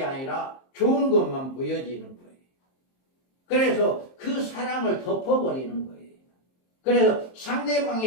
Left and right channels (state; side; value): late; right; 23 ms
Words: 아니라 좋은 것만 보여지는 거예요. 그래서 그 사랑을 덮어버리는 거예요. 그래서